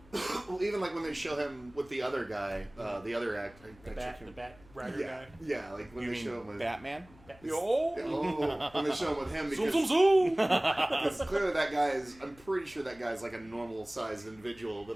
Well, even like when they show him with the other guy, the other actor. The bat rider Yeah. guy. Yeah, like when You they show him mean with. Batman? Yo! Oh, when they show him with him Zoom, because zoom, zoom! because clearly that guy is. I'm pretty sure that guy's like a normal sized individual,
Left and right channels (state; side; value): noise; left; hum, 25 dB below the sound